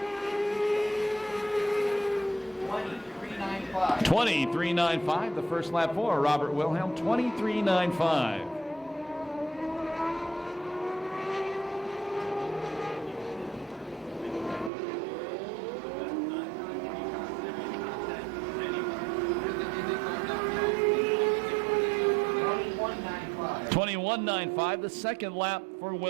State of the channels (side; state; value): left; drops out; at 14.7 s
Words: $23.95 the first lap for Robert Wilhelm. $23.95. $21.95 the second lap for